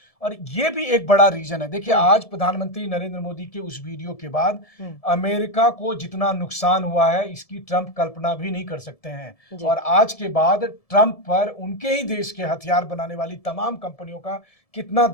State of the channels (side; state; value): right; late; 1.7 ms